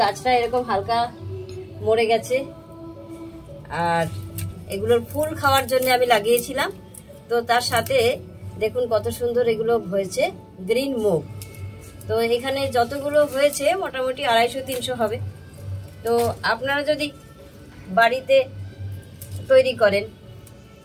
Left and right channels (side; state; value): both; identical; correlation 1.00